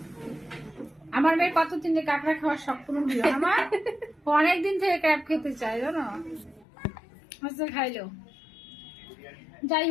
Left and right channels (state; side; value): drops out; right; at 6.7 s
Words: আমার মেয়ে কতদিন যে কাঁকড়া খাওয়ার শখ পূরণ হলো। আমার অনেকদিন থেকে ক্র্যাব খেতে চাই, জানো, হচ্ছে খাইলো। যাই